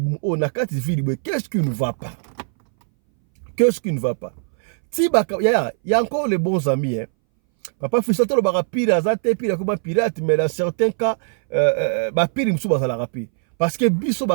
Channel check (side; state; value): left; silent; 62 dB below the other